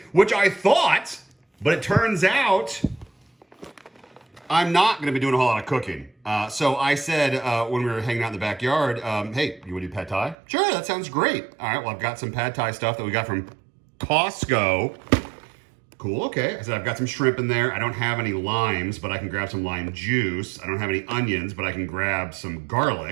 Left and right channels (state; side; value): drops out; left; at 10.4 s